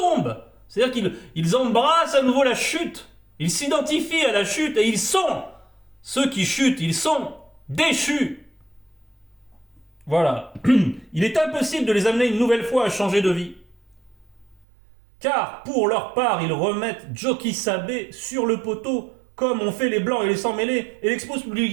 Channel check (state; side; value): drops out; left; at 14.7 s